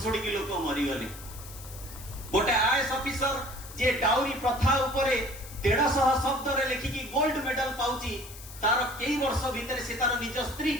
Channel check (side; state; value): left; noise; hiss, 15 dB below the sound